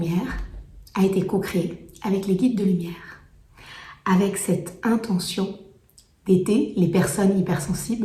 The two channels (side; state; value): both; identical; correlation 1.00